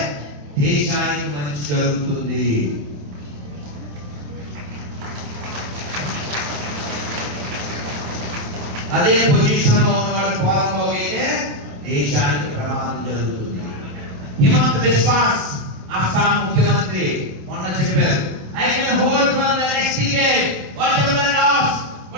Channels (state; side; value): late; left; 27 ms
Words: దేశానికి మంచి జరుగుతుంది. అదే పొజిషన్ లో ఉన్నవాడు పోరంబోగు అయితే దేశానికి ప్రమాదం జరుగుతుంది. హిమంత విశ్వాస్ అస్సాం ముఖ్యమంత్రి మొన్న చెప్పారు, I can hold for the next decade what ever last